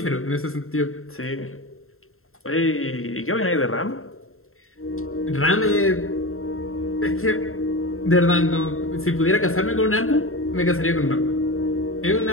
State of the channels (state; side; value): late; right; 0.62 ms